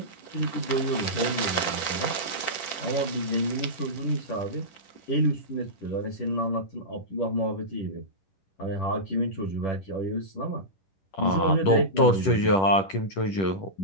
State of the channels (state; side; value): late; right; 10 ms